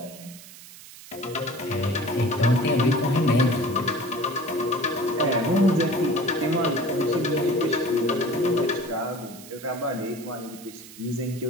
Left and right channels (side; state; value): right; noise; hiss, 18 dB below the sound